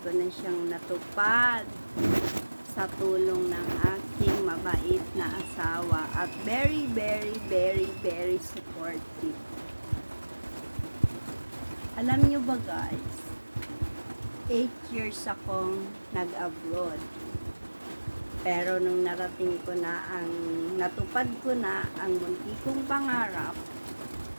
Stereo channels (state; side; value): inverted; both; correlation -1.00